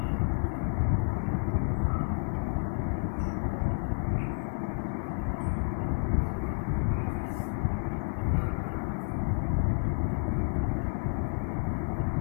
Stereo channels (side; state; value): right; silent; digital silence